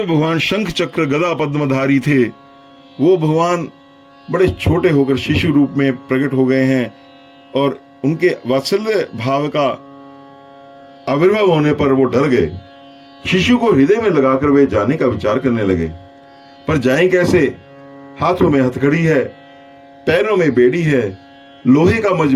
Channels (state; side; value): identical; both; correlation 1.00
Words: भगवान शंख चक्र गदा पद्मधारी थे वो भगवान बड़े छोटे होकर शिशु रूप में प्रकट हो गए हैं, और उनके वात्सल्य भाव का आविर्भाव होने पर वो डर गए। शिशु को हृदय में लगाकर वे जाने का विचार करने लगे, पर जाएं कैसे? हाथों में हथकड़ी है, पैरों में बेड़ी है, लोहे का